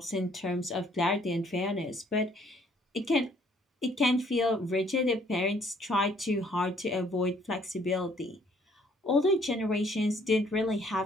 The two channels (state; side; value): normal; both; correlation 0.63